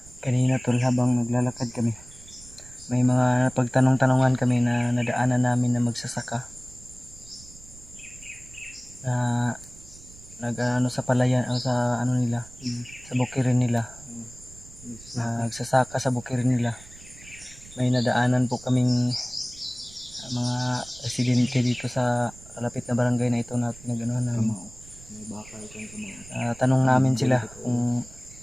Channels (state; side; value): noise; right; rumble, 20 dB below the sound